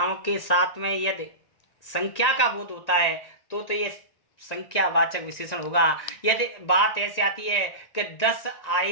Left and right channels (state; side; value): late; right; 1.9 ms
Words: के साथ में यदि संख्या का बोध होता है तो ये संख्यावाचक विशेषण होगा। यदि बात ऐसे आती है कि 10